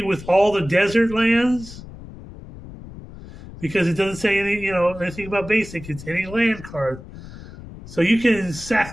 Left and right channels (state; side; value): noise; left; rumble, 15 dB below the sound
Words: all the desert lands, because it doesn't say anything about basic. It's any land card. So you can